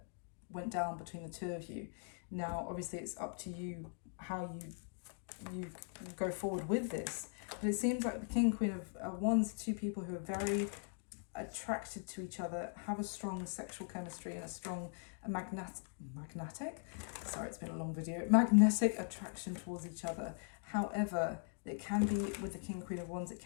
went down between the two of you. Now, obviously, it's up to you how you go forward with this. But it seems like the King, Queen of Wands, two people who are very attracted to each other, have a strong sexual chemistry and a strong magnetic attraction towards each other. However, it can be, with the King, Queen of Wands, it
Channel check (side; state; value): right; silent; 51 dB below the other